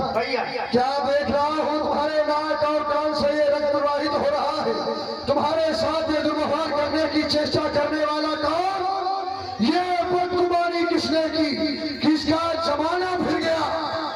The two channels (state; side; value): identical; both; correlation 1.00